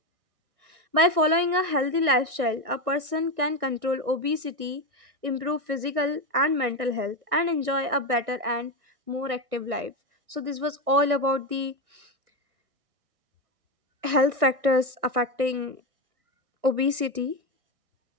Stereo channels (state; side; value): late; left; 1.6 ms